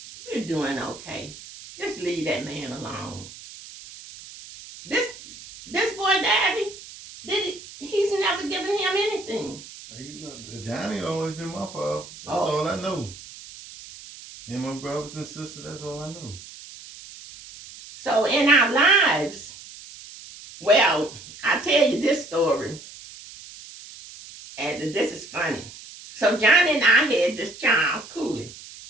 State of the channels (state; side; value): noise; right; hiss, 16 dB below the sound